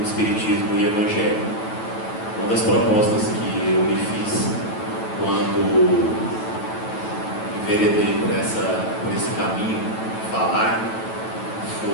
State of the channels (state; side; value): late; right; 9.1 ms